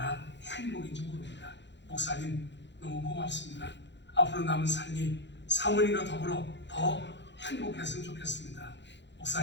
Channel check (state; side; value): late; right; 0.52 ms